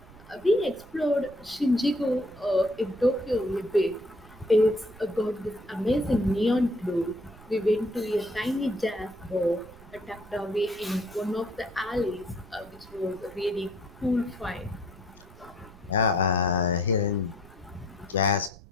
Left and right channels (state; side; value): noise; right; rumble, 21 dB below the sound